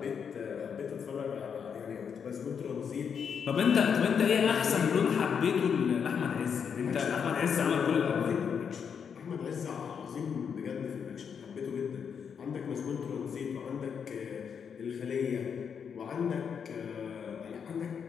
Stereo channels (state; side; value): quieter; right; 7.0 dB